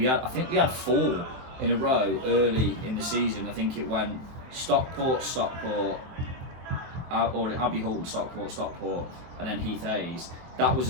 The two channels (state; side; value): late; left; 24 ms